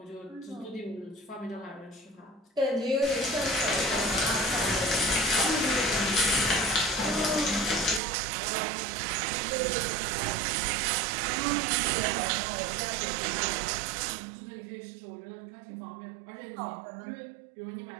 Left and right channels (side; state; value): left; drops out; at 8.0 s